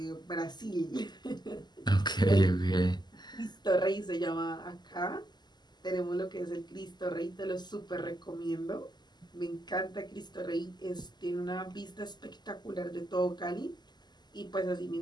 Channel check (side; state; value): right; late; 0.21 ms